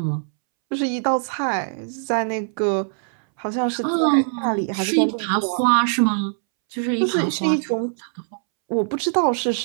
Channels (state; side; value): silent; left; 64 dB below the other